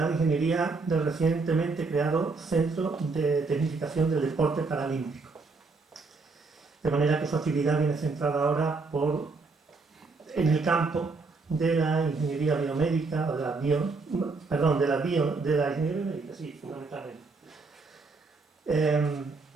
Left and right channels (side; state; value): left; quieter; 4.0 dB